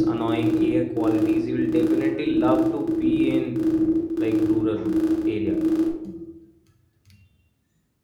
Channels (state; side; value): identical; both; correlation 1.00